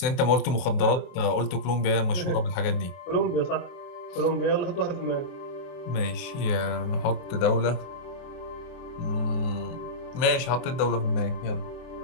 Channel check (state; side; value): late; right; 23 ms